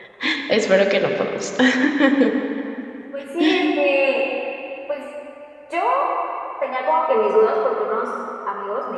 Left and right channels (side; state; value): both; identical; correlation 1.00